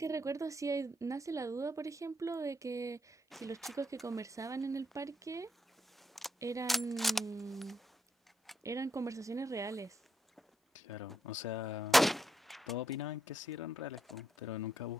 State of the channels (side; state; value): both; normal; correlation 0.79